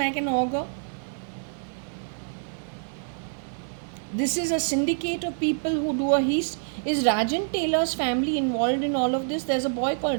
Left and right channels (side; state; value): left; silent; digital silence